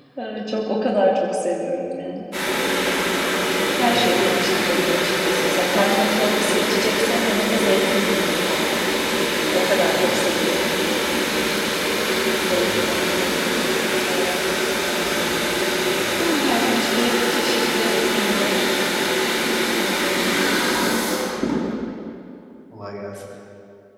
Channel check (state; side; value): identical; both; correlation 1.00